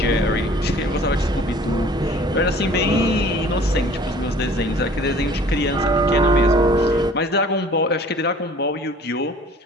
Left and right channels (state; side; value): normal; both; correlation 0.50